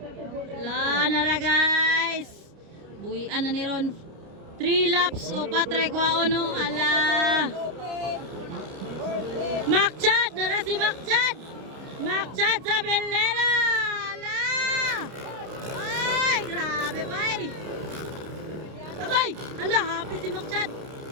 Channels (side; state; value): left; late; 29 ms